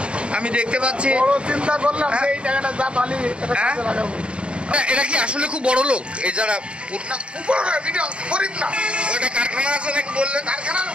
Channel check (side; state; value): left; late; 0.058 ms